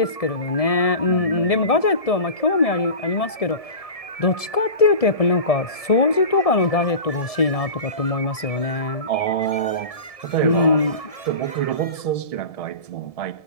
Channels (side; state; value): right; late; 1.7 ms